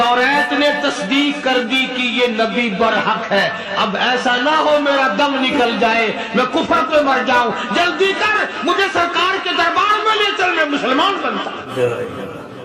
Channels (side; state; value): both; identical; correlation 1.00